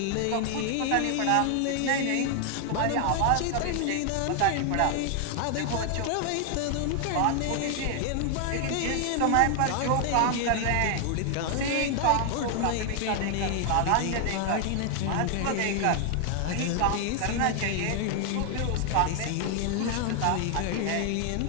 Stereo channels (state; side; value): different; both; correlation 0.00